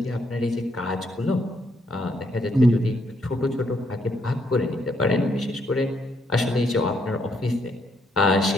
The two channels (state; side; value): normal; both; correlation 0.74